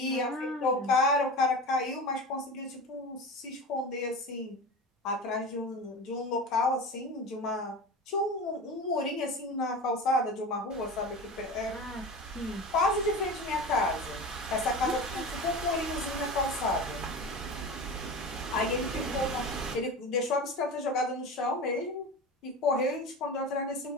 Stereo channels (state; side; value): normal; both; correlation 0.30